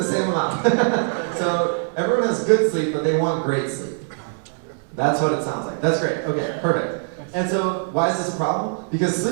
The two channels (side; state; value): left; silent; digital silence